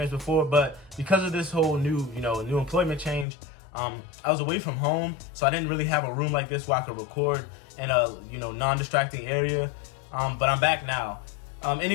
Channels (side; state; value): right; drops out; at 3.2 s